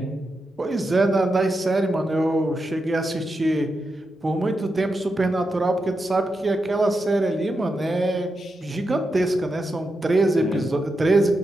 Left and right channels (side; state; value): both; normal; correlation 0.87